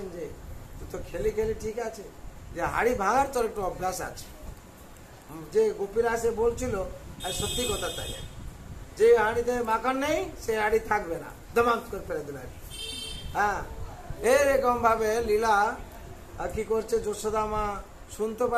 যে তুই তো খেলি ঠিক আছে, যে হাড়ি ভাঙার তোর একটু অভ্যাস আছে। যে গোপীরা সে বলছিল, আর সত্যি কথা তাই, যে হাড়িতে মাখন নেই সে হাড়ি থাকবে না, দমাম করে ফেলে দিল। হ্যাঁ, এরকম ভাবে লীলা কি করছে যশোদা মা শুনতে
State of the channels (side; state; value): both; identical; correlation 1.00